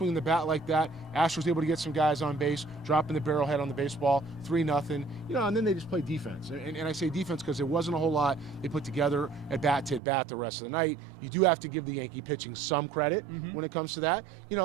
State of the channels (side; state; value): left; drops out; at 10.0 s